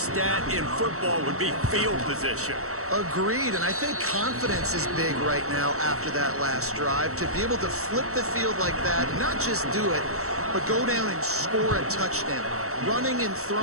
in football would be field position. Agreed, and I think confidence is big right now after that last drive. To be able to flip the field like that, not just do it, but go down and score a touchdown. Running and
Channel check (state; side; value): late; left; 0.64 ms